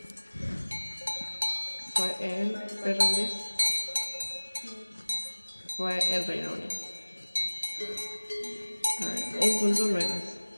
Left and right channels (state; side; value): inverted; both; correlation -1.00